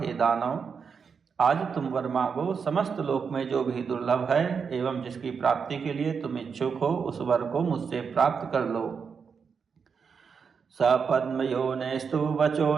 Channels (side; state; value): left; quieter; 6.0 dB